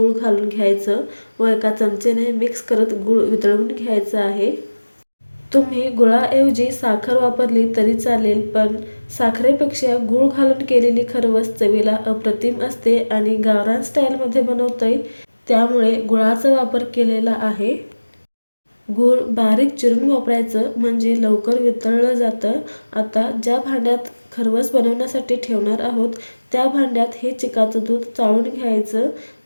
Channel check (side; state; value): both; inverted; correlation -1.00